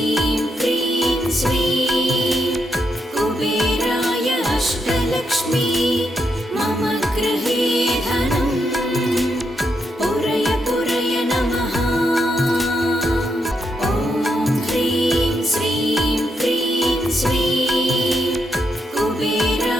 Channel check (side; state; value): both; normal; correlation 0.81